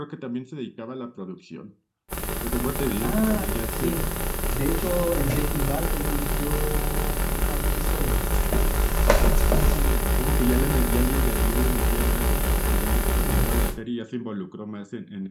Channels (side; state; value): both; identical; correlation 1.00